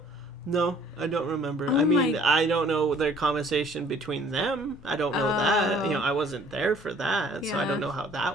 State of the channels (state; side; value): normal; both; correlation 0.56